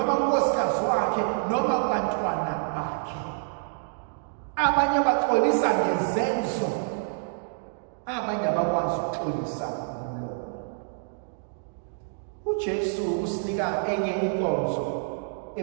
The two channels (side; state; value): left; silent; digital silence